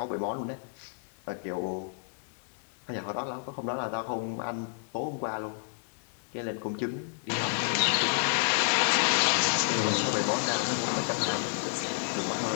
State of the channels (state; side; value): silent; right; 58 dB below the other